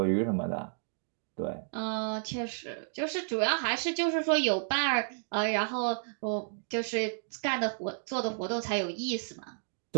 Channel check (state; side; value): silent; left; digital silence